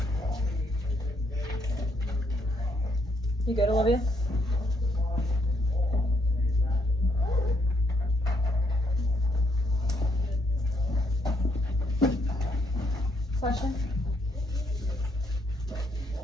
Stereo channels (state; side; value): normal; both; correlation 0.74